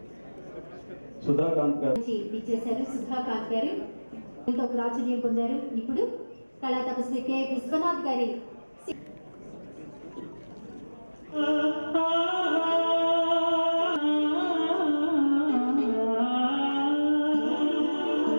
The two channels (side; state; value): both; inverted; correlation -1.00